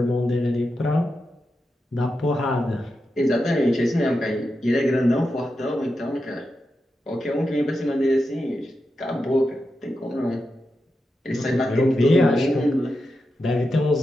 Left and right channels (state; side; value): normal; both; correlation 0.89